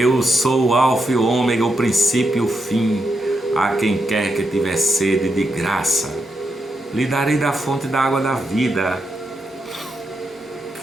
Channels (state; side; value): normal; both; correlation 0.83